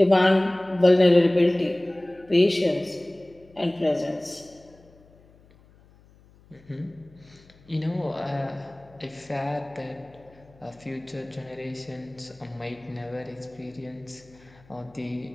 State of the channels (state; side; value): noise; left; hum, 27 dB below the sound